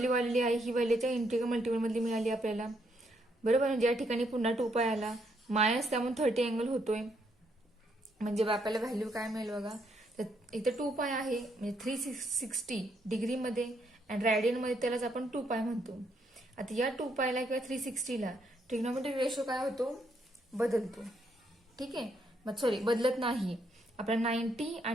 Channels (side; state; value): both; normal; correlation 0.74